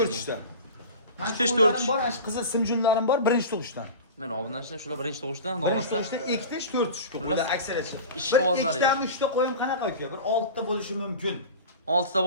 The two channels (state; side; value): inverted; both; correlation -0.33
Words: 4 Ikkitish, to'rtish. bor, ana qizil simjunlarim bor, birinchi tug'ishdan. Mana obunachilar shular birinchi tug'ishdan Birinchi davomlashsa. tug'ishdan ikkitish, to'rtish qo'ylar aksariyat. Ish Bir qog'ozlari. ikkitami, uchta qo'yim qanaqa uka? Bir 6 ta bo'lishi mumkin. 6 ta